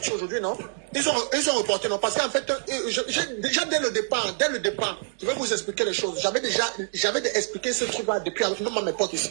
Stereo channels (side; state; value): left; silent; digital silence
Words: aujourd'hui, non? Ils ont reporté, non? Parce qu'en fait, déjà dès le départ, je vais vous expliquer les choses. J'avais expliqué ce truc-là depuis, même à mes potes ici,